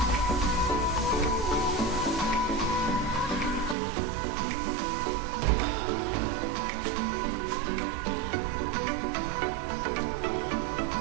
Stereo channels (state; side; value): drops out; left; at 3.8 s